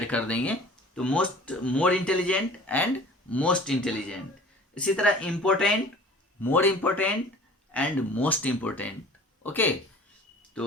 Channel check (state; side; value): normal; both; correlation 0.46